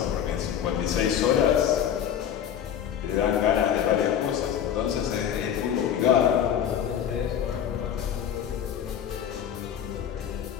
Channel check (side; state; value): right; quieter; 9.3 dB